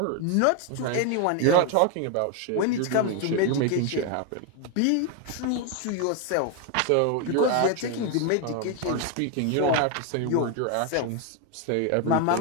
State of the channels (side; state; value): both; different; correlation 0.01